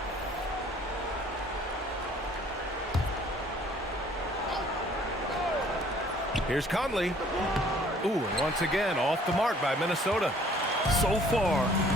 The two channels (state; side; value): normal; both; correlation 0.57